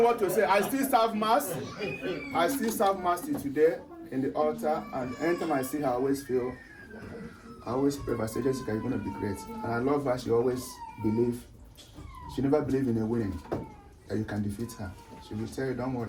what to say. I still serve mass. Till today in the altar, and anytime I see her, I always pray. I say, Jessica, you're gonna be great. And I love her. She always believe. She never believed in a winning. That you can defeat her. She will tell you, don't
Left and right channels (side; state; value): both; identical; correlation 1.00